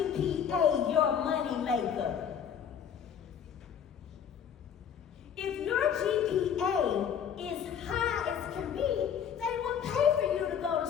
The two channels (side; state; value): right; quieter; 8.1 dB